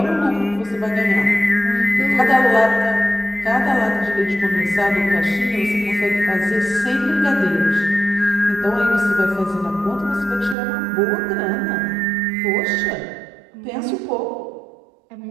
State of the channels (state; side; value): drops out; left; at 10.6 s